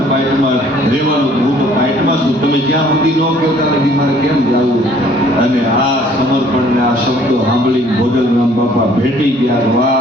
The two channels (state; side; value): normal; both; correlation 0.58